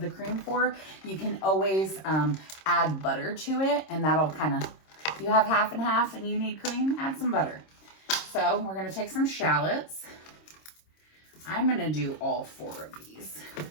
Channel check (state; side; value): late; right; 26 ms